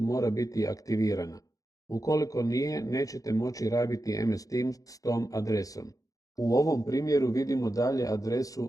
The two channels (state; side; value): late; right; 0.17 ms